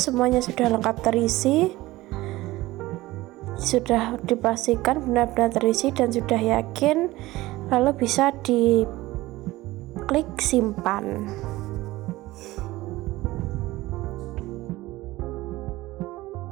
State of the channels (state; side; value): quieter; left; 18.4 dB